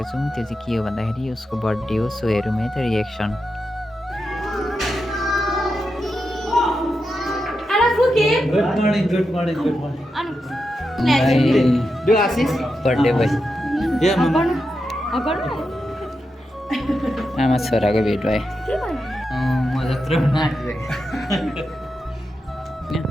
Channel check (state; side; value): normal; both; correlation 0.87